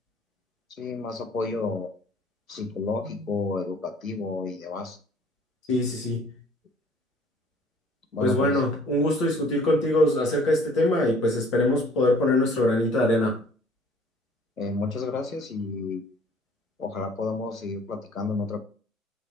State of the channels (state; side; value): normal; both; correlation 0.55